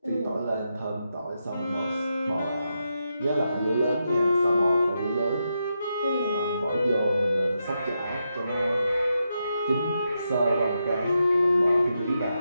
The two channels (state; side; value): inverted; both; correlation -0.84